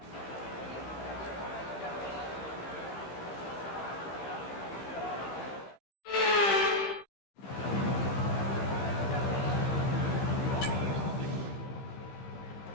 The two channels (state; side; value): late; right; 15 ms